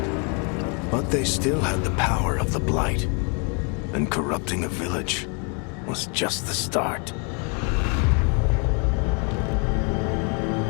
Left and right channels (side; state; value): right; quieter; 36.5 dB